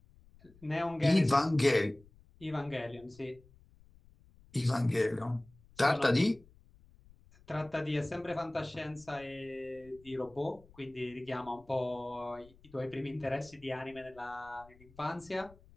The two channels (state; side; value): noise; left; rumble, 26 dB below the sound